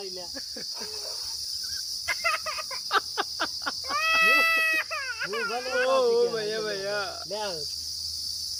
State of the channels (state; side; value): identical; both; correlation 1.00